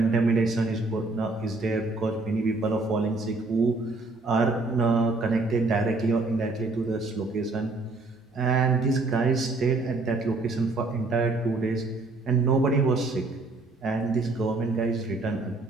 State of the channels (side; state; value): left; quieter; 3.3 dB